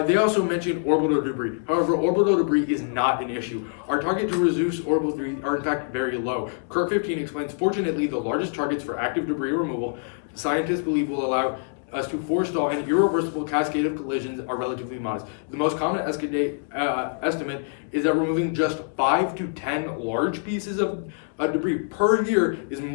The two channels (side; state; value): right; silent; digital silence